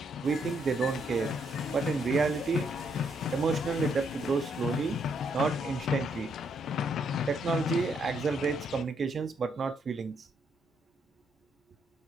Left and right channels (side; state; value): both; normal; correlation 0.74